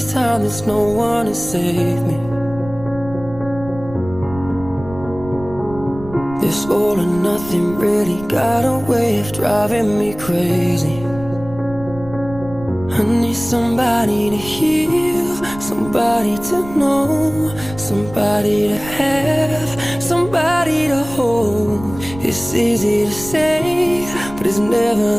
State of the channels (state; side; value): noise; right; rumble, 15 dB below the sound